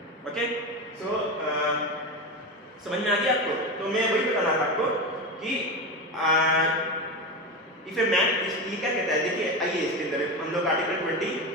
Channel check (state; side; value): normal; both; correlation 0.20